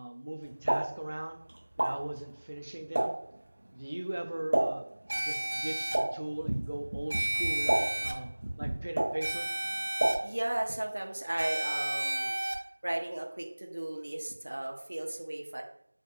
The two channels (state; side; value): inverted; both; correlation -1.00